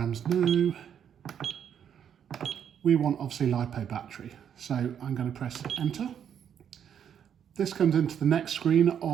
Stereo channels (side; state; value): left; quieter; 8.7 dB